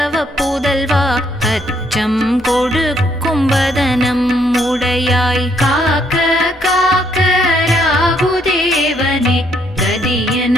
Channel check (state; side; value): noise; left; hum, 28 dB below the sound